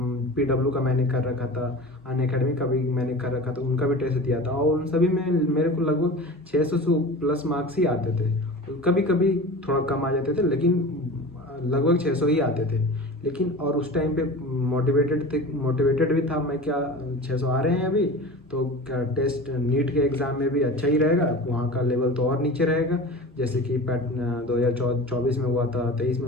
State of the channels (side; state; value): both; normal; correlation 0.34